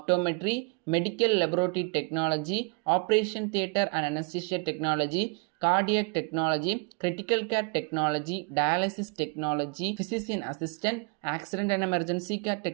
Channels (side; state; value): left; quieter; 34.3 dB